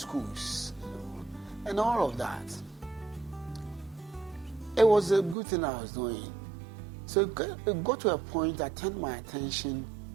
and all of that. It was a good thing I was doing. So it got to a point that turned my attention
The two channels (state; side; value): drops out; left; at 5.4 s